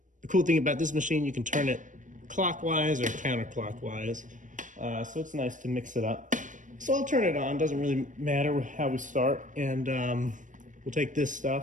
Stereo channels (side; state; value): left; late; 0.37 ms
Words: cool thing about this machine, you can turn it clockwise or counterclockwise. So it's nice to mix it up. So I'll turn it on, doesn't really matter how we start. And we'll take this